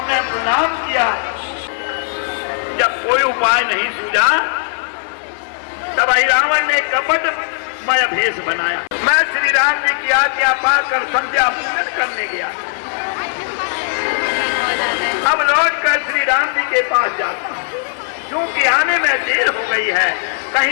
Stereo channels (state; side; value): silent; right; 58 dB below the other